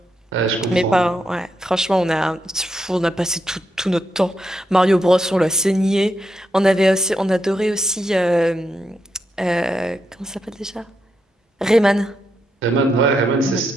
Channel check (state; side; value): normal; both; correlation 0.82